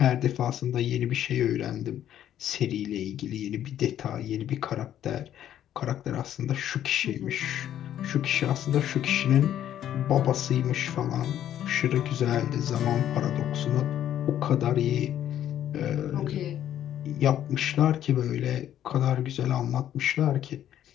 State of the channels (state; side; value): quieter; right; 11.1 dB